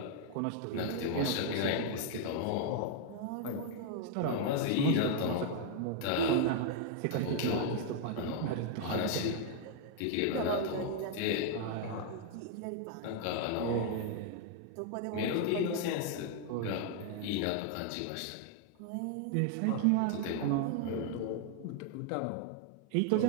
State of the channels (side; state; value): both; different; correlation 0.00